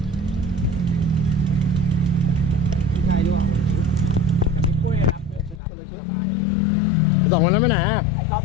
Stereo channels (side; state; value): right; drops out; at 5.6 s